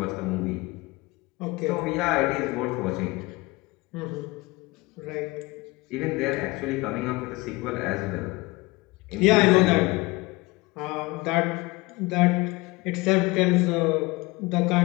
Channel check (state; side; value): quieter; right; 23.2 dB